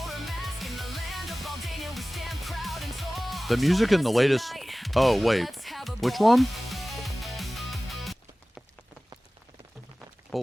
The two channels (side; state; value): both; normal; correlation 0.98